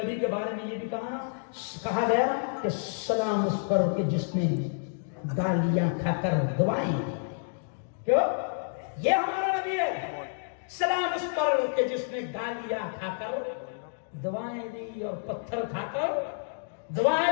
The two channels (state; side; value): silent; right; digital silence